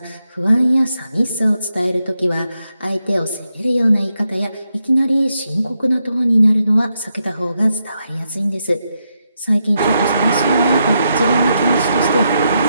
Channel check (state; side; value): inverted; both; correlation -0.83